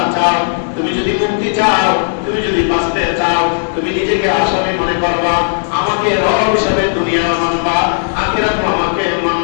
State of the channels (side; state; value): right; silent; digital silence